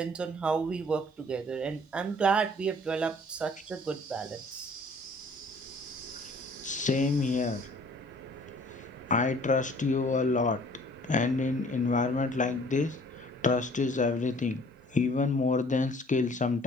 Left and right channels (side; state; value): both; normal; correlation 0.54